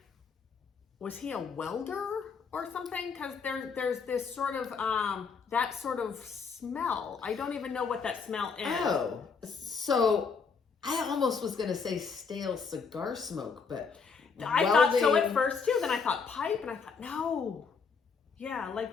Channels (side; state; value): right; quieter; 5.5 dB